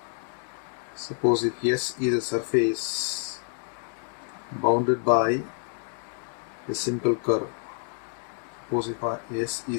Suppose if S is a surface bounded by a simple curve. Suppose if S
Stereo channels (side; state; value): right; silent; 59 dB below the other